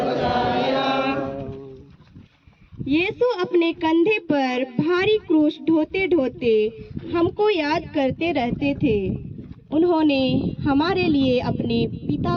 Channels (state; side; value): identical; both; correlation 1.00